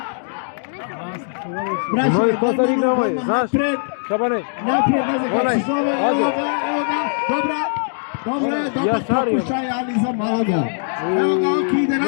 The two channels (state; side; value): silent; right; digital silence